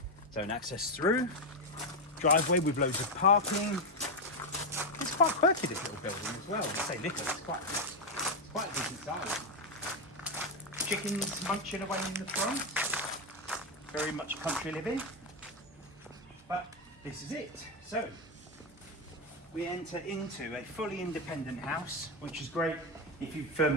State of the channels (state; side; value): normal; both; correlation 0.06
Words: its own access through, driveway with loads of parking. It's quite quirky, this little building as well. I say little, it's quite a decent size. Chickens munching away in the front. Very much country living. But this is it. So we enter into a fully independent house, which is great if you for